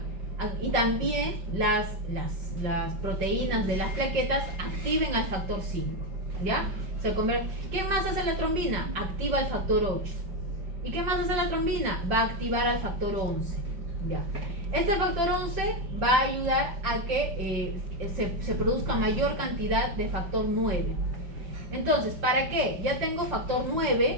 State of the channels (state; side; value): late; left; 5.6 ms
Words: Y también las proteínas de las plaquetas activen al factor 5, ¿ya? ¿Qué más hace la trombina? Activa el factor 8. ¿Y qué más hace la trombina? Va a activar al factor 11. ¿Ya? Este factor 11 va a ayudar a que se produzca mayor cantidad de factor 9. Entonces, ¿para qué? Ya tengo factor